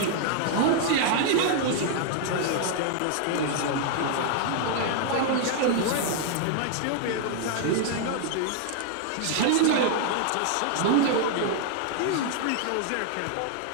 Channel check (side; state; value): both; different; correlation 0.00